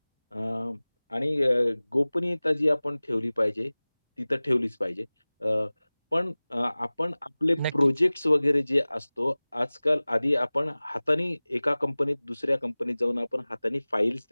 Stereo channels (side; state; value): both; inverted; correlation -0.99